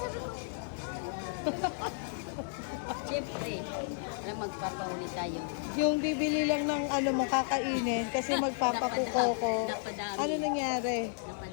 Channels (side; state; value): right; silent; digital silence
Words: Sabi ko, Siyempre, magpapauli tayo. Yung bibili lang ng ano mo kakainin kasi magpapakuko ko. Napadami. Ano nangyari?